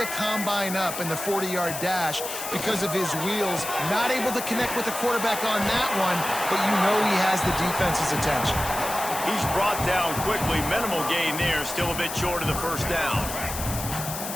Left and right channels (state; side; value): noise; left; hiss, 7 dB below the sound